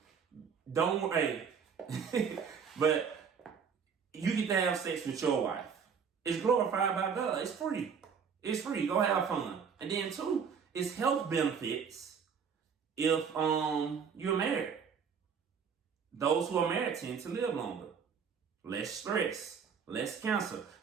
don't worry. But you get to have sex with your wife. It's glorified by God. It's free. It's free. Go have fun. And then two, it's health benefits if you're married. Those who are married tend to live longer. Less stress, less cancer.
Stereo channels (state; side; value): quieter; left; 6.5 dB